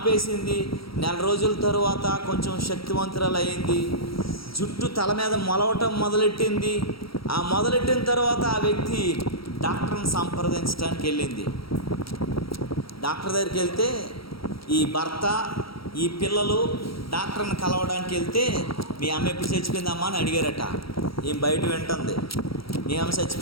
1 రోజుల తరువాత కొంచెం శక్తివంతురాలు అయింది. జుట్టు తల మీద మొలవటం మొదలెట్టింది. ఆ మొదలెట్టిన తర్వాత ఆ వ్యక్తి డాక్టర్ని సంప్రదించడానికి వెళ్ళింది. డాక్టర్ దగ్గరికి వెళ్తే ఈ భర్త, ఈ పిల్లలు డాక్టర్ని కలవడానికి వెళ్తే మీ అమ్మ ఎప్పుడు చచ్చిపోయిందమ్మా అని అడిగారట. ఏం బయట వింటుంది, మీ అమ్మ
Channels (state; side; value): late; right; 0.75 ms